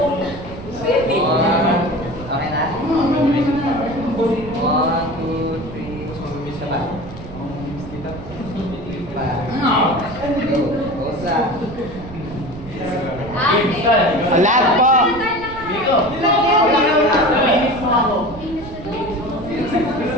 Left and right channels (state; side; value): noise; right; rumble, 14 dB below the sound